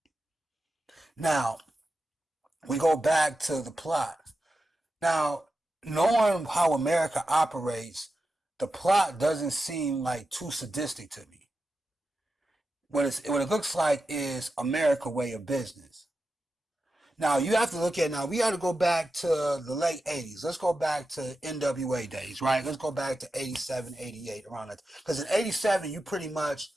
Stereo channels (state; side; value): normal; both; correlation 0.91